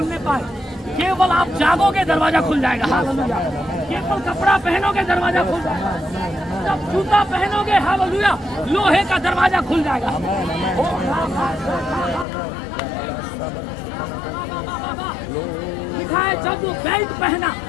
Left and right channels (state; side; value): drops out; right; at 12.2 s